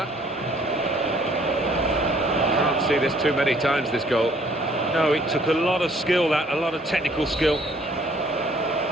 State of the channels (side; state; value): both; normal; correlation 0.60